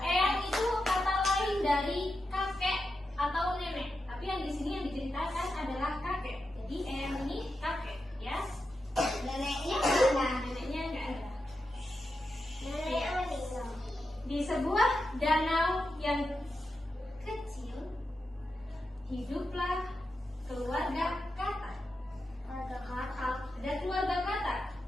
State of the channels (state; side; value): normal; both; correlation 0.89